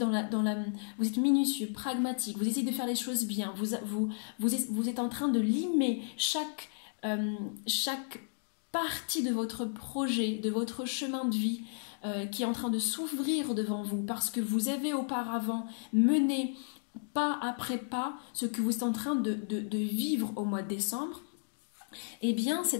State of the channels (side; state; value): right; silent; digital silence